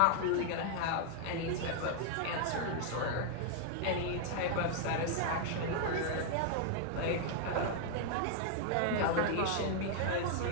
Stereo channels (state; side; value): different; both; correlation 0.00